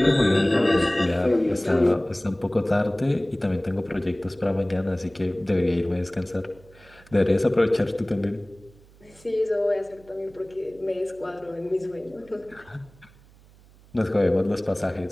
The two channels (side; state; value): right; noise; hum, 26 dB below the sound